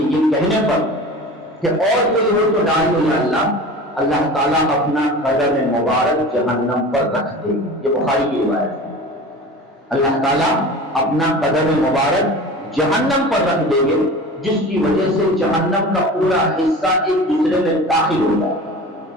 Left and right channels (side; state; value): both; normal; correlation 0.36